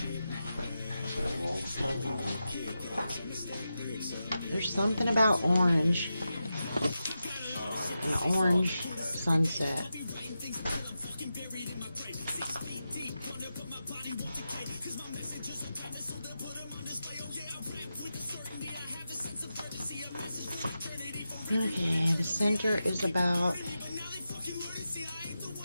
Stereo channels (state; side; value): inverted; both; correlation -0.90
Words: There's something about orange. An orange sunset. Okay, the center is about